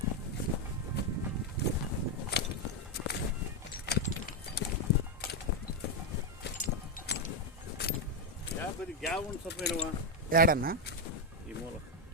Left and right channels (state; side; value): normal; both; correlation 0.04